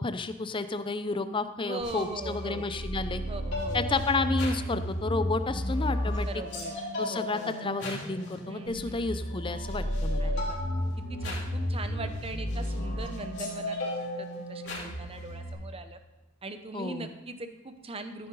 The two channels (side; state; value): both; normal; correlation 0.52